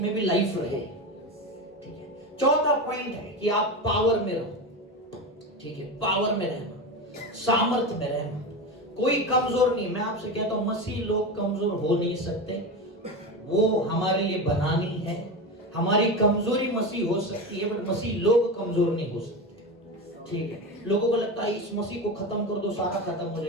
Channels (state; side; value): normal; both; correlation 0.21